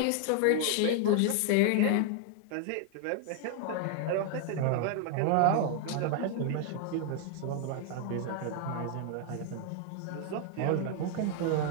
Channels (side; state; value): both; different; correlation 0.00